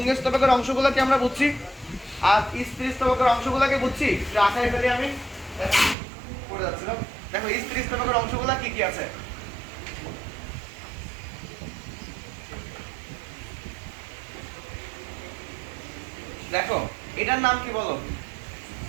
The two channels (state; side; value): drops out; left; at 6.0 s